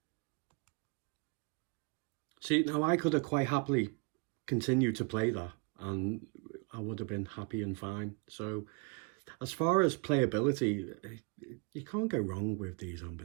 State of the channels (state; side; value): quieter; left; 32.7 dB